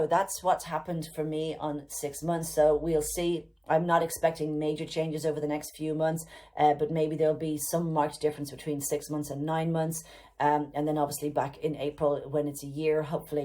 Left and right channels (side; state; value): both; identical; correlation 1.00